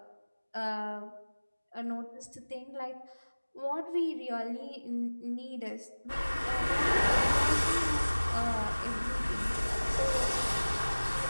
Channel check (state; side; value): inverted; both; correlation -1.00